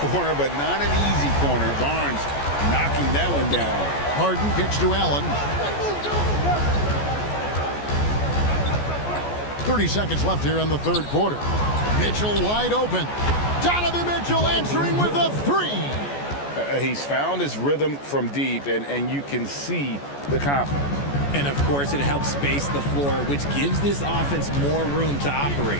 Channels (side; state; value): right; late; 14 ms